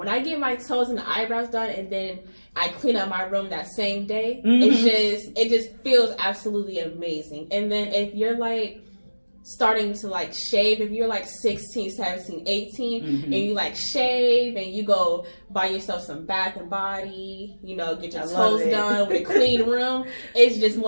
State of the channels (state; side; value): inverted; both; correlation -1.00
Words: I get my toes and the eyebrows done and then I clean up my room that same day, it just feels absolutely amazing. And then if you're like starting to like shave, if you're like 16, 17, 18 and you like shave and you go buy yourself some Bath and Body, you know, get your toes done with a clean room, it's just